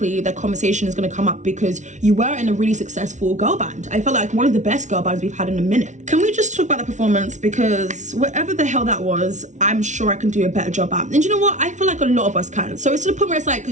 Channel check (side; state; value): left; late; 0.35 ms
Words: the conversation is going to come up because you were in a really successful girl band. I felt like one of the best girl bands we've had in a minute. Can we just talk about the performance? Because whatever the hell that was, I'm sure I can do a better job at. And you know what? I feel like a lot of us can. So it's to the point where it's like,